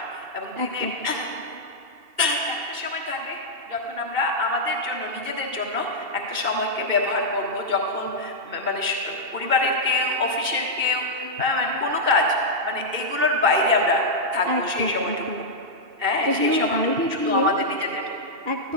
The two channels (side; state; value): left; late; 2.7 ms